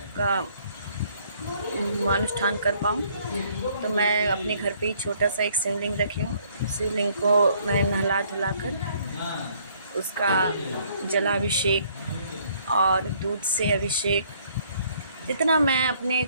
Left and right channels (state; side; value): inverted; both; correlation -0.64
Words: का अनुष्ठान कर पाऊँ। तो मैं अपने घर पे ही छोटा सा एक शिवलिंग रखी हूँ। शिवलिंग को मैं नहला धुला कर उसका जलाभिषेक और दूध से अभिषेक जितना मैं अपने